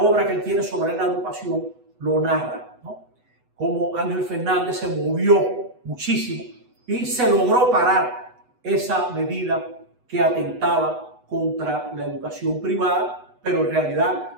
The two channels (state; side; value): late; left; 8.1 ms